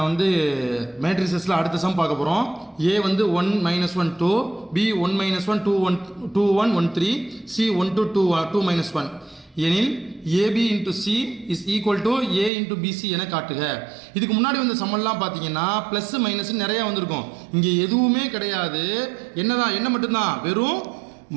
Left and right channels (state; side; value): drops out; left; at 12.5 s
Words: வந்து மேட்ரிசஸில் அடுத்த சம் பார்க்க போகிறோம். ஏ வந்து 1 -1 2, பி 1 -1 2 1 2 1 1 3, சி 1 to 2 2 -1 எனில் A B into C is equal to A into B C என காட்டுக. இதுக்கு முன்னாடி வந்த சம்மெல்லாம் பார்த்தீங்கன்னா ப்ளஸ் மைனஸ் நிறையா வந்திருக்கும். இங்கே எதுவுமே கிடையாது. என்ன மட்டும்தான், வெறும்